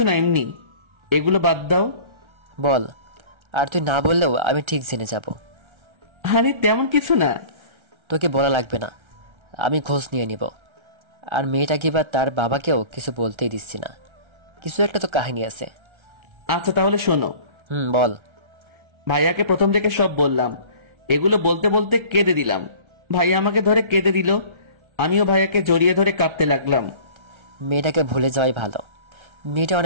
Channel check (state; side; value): late; left; 1.3 ms